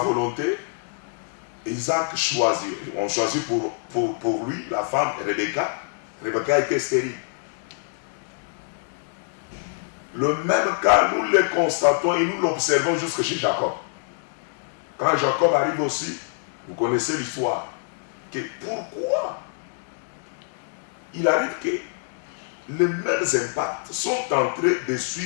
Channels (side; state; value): right; silent; digital silence